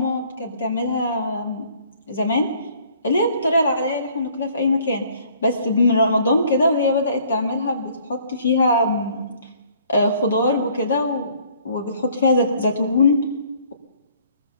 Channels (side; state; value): both; inverted; correlation -0.59